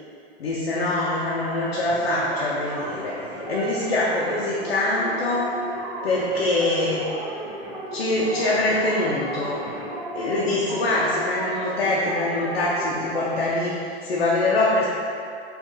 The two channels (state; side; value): normal; both; correlation 0.26